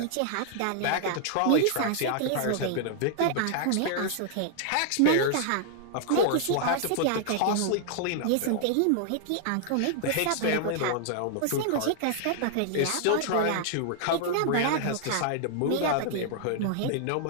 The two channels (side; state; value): both; different; correlation -0.01